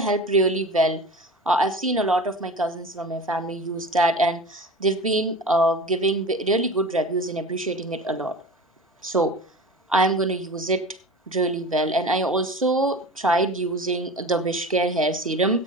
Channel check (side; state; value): both; normal; correlation 0.34